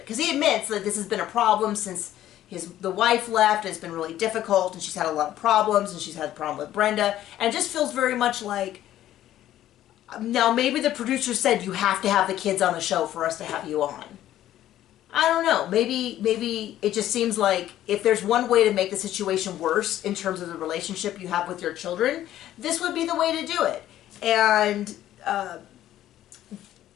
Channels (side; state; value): right; quieter; 12.8 dB